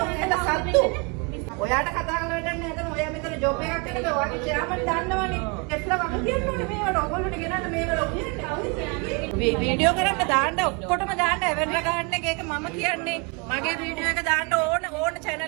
ඔයාලා සත්තු. ඔයාට කතා කරලා වැඩන්නේ නැතන ඔයා මෙතන ජොබ් එකක් කරලා ඔයාගේ chairman දන්නවනේ. එట్లా වගේ කියනෝනේ මේවට ඔයගොල්ලෝට ගෙනන්න මේවල කියන්නේ. වීඩියෝ කරන්න දාන්න ඔක්කොටම දාන්න එවෙන්ට ගන්න එක මම කියන්නේ. මගේ වීඩියෝ එක දාන්න ඕන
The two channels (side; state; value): left; quieter; 31.5 dB